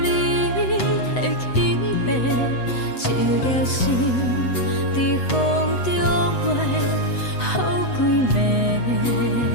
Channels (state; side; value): late; right; 8.0 ms